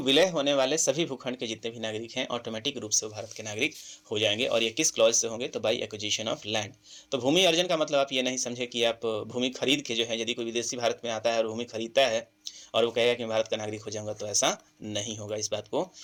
होने वाले सभी भूखंड के जितने भी नागरिक हैं ऑटोमेटिक रूप से वो भारत के नागरिक हो जाएंगे। और ये किस क्लॉज से होंगे? तो बाई एक्विजिशन ऑफ लैंड। तो भूमि अर्जन का मतलब आप ये नहीं समझे कि आप भूमि खरीद के जो है, यदि कोई विदेशी भारत में आता है और भूमि खरीदता है और वो कहेगा कि मैं भारत का नागरिक हो जाऊंगा, तो ऐसा नहीं होगा। इस बात को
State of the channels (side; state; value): both; identical; correlation 1.00